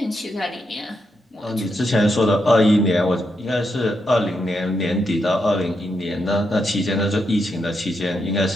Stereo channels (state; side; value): normal; both; correlation 0.82